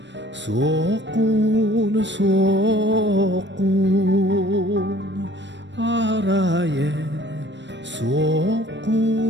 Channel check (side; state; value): left; late; 0.53 ms